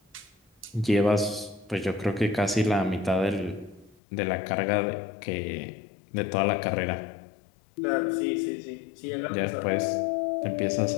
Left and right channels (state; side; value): drops out; right; at 4.0 s